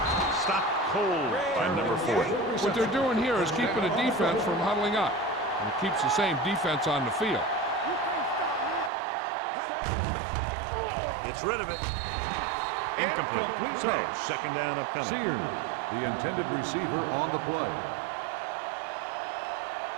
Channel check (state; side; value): drops out; left; at 8.9 s